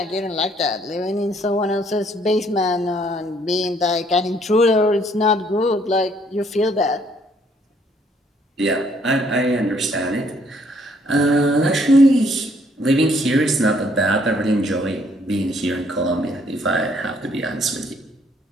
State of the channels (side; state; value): both; normal; correlation 0.65